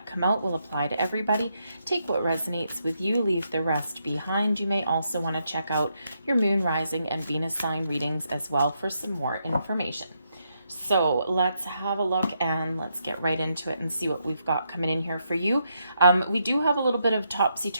come out will apply to everybody. Take what resonates with you, leave the rest behind. You may also want to check out your moon, rising, and Venus sign readings as well for some more information. So let's have a look and let's get right into it and see what we've got coming in here for you. We do have a little bit of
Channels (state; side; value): inverted; both; correlation -0.79